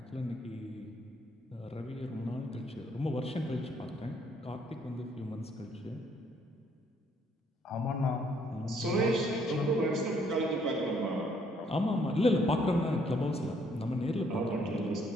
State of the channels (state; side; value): normal; both; correlation 0.67